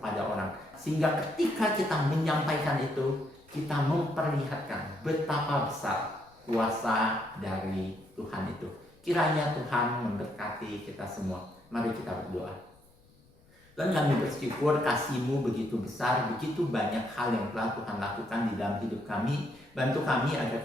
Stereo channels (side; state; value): left; noise; rumble, 29 dB below the sound